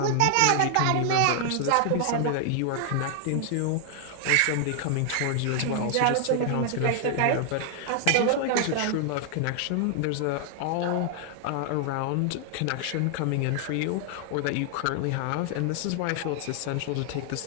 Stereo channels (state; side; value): different; both; correlation 0.00